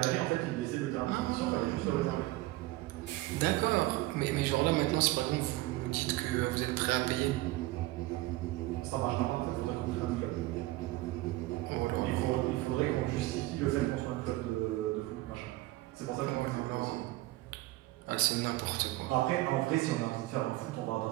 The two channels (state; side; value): quieter; left; 18.4 dB